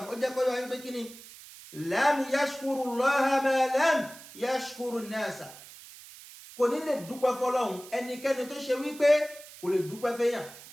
ó jẹ́ kó yọ wáyé pé kí ni lam yashkuru Allaha ma lam yashkuru nasa. kò ní lè dúpẹ́ fọ́lọ́hun ẹnikẹ́ni tó ṣe wípé kò lè dúpẹ́ fẹ́yàn.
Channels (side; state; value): right; noise; hiss, 18 dB below the sound